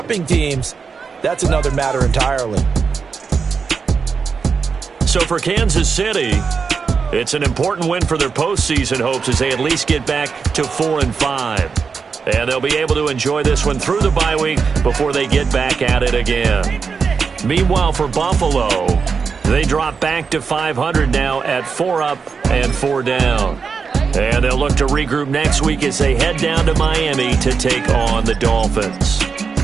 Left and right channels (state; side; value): quieter; left; 5.5 dB